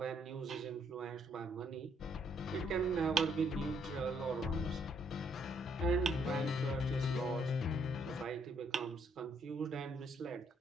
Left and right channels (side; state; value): both; normal; correlation 0.69